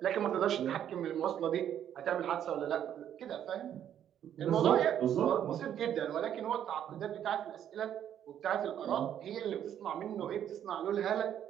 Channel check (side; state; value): left; quieter; 10.0 dB